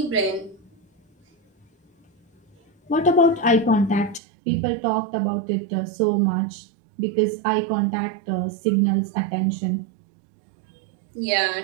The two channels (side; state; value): left; drops out; at 4.2 s